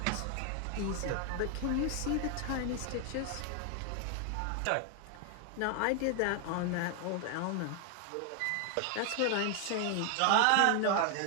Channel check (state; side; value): different; both; correlation 0.00